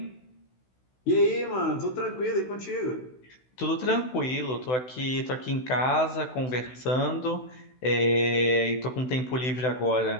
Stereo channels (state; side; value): late; right; 16 ms